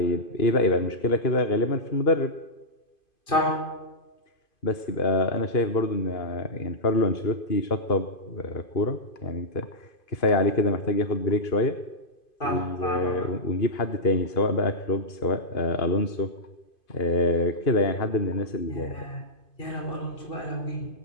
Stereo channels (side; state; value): right; late; 2.5 ms